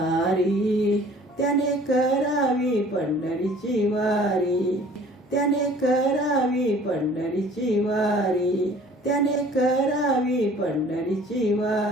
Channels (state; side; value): normal; both; correlation 0.51